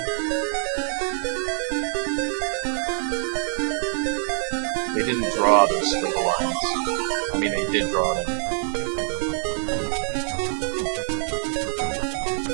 They didn't draw those squiggly lines. I mean, they did draw them.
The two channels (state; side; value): silent; left; digital silence